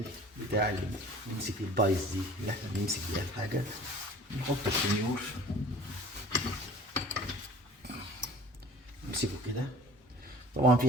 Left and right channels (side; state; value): both; normal; correlation 0.46